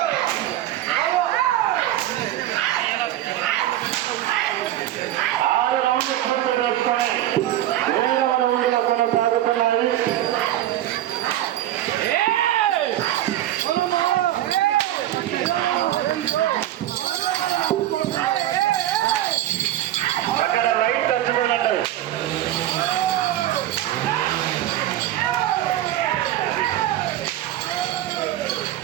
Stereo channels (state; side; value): quieter; left; 13.3 dB